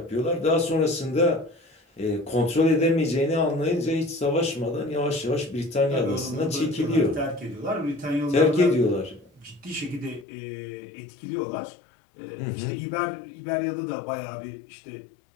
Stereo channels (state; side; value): drops out; right; at 10.2 s